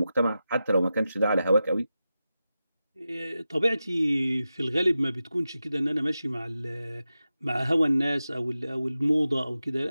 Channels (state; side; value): inverted; both; correlation -0.92